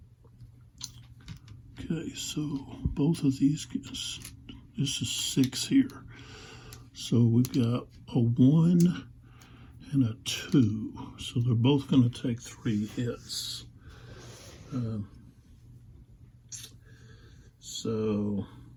Okay, so both of these guys, this is 6 here. So we've got a 1 and a 2. So they're both going to take 3 hits. So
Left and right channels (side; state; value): both; identical; correlation 1.00